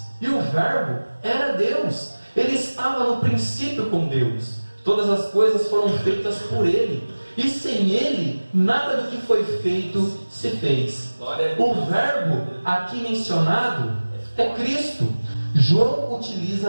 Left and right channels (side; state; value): both; inverted; correlation -1.00